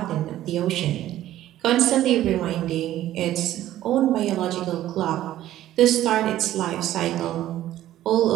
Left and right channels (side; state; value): left; quieter; 13.4 dB